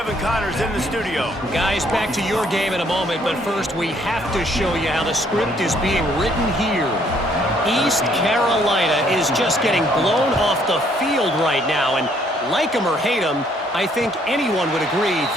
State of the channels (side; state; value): both; normal; correlation 0.66